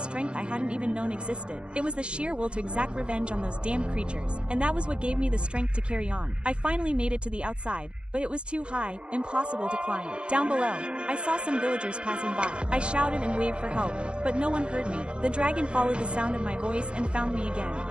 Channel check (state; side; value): late; left; 0.055 ms